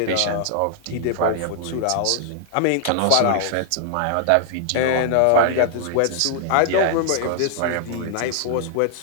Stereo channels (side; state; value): both; different; correlation 0.00